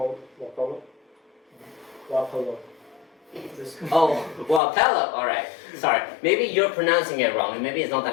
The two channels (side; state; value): right; drops out; at 4.6 s